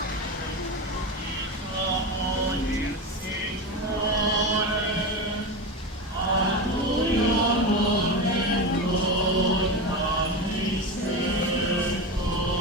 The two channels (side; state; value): both; normal; correlation 0.20